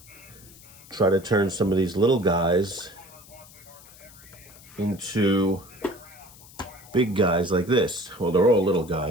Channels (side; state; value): left; noise; hiss, 22 dB below the sound